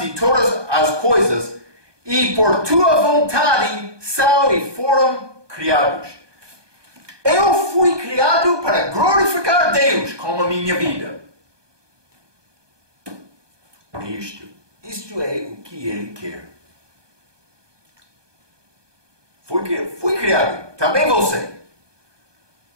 todas as coisas e por tua vontade são e foram criados. Eu fui criado para glorificar Deus com a minha vida. Isto é o que Ele quer. Fui criado, também você,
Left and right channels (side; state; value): left; late; 1.2 ms